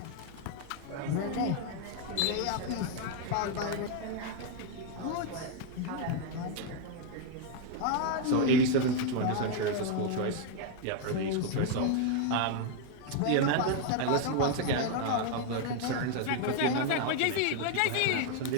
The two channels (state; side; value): different; both; correlation 0.00